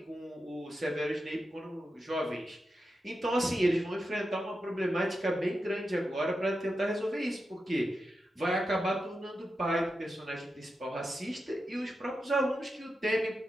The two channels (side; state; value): both; normal; correlation 0.89